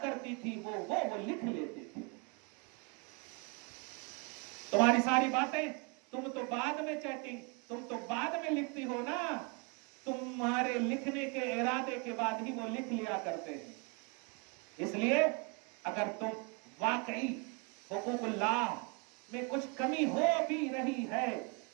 کرتی تھی وہ لکھ لیتے تھے. تمہاری ساری باتیں، تم تو بعد میں چیٹنگ، تم تو بعد میں لکھتی ہو نا، تمہارے لکھنے کے ارادے کے بعد ہی وہ لکھ لیا کرتے ہیں. اس لیے اگر تم واقعی حقوق اللہ میں کچھ کمی ہو بھی رہی ہے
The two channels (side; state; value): left; quieter; 32.1 dB